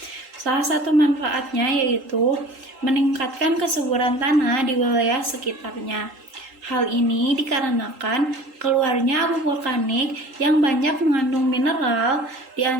Salah satu manfaatnya yaitu meningkatkan kesuburan tanah di wilayah sekitarnya. Hal ini dikarenakan keluarnya abu vulkanik yang banyak mengandung mineral, di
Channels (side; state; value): left; late; 3.8 ms